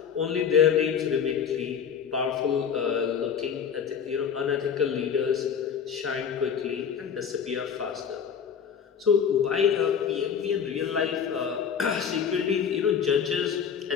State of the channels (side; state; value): right; quieter; 7.4 dB